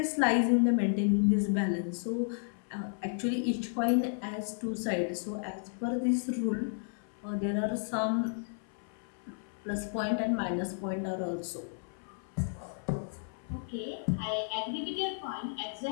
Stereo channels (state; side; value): silent; right; 56 dB below the other